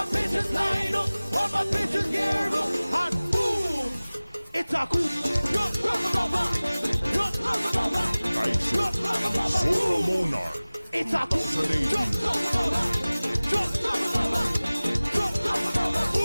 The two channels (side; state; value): both; inverted; correlation -0.99